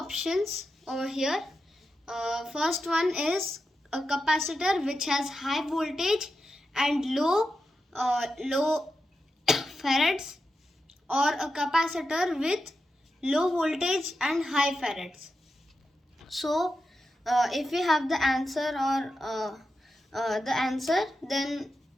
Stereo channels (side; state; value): both; normal; correlation 0.88